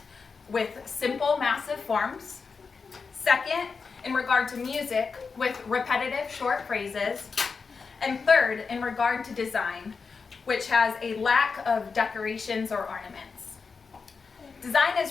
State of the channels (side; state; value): right; quieter; 5.0 dB